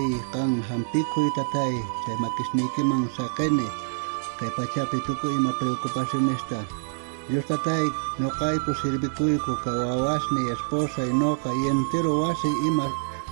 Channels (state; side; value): silent; left; 61 dB below the other